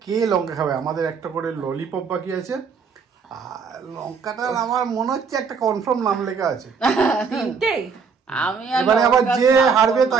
কে লঙ্কা খাবে, আমাদের একটা করে ললিপপ বাকি আছে। আর লঙ্কাটা আমার মনে হচ্ছে একটা কনফার্ম নাম লেখা আছে। 3টেই? আমি আর এবারে আবার লঙ্কা যে খাবো হারবে না।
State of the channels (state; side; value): quieter; left; 5.7 dB